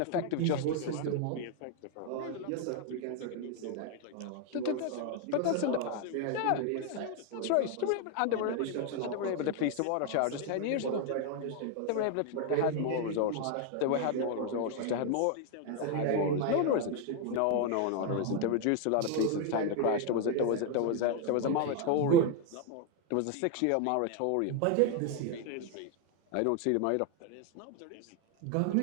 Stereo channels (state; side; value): different; both; correlation 0.01